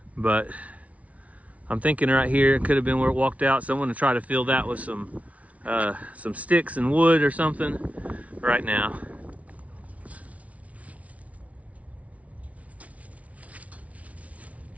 but I'm thinking right here, it could have been where it walked out. So I'm gonna try to fill that with some sticks and wood or something right now.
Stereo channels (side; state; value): left; late; 0.067 ms